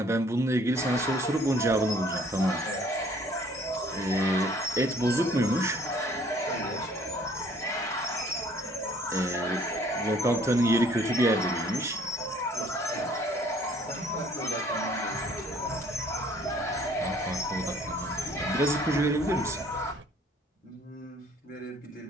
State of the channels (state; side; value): normal; both; correlation 0.58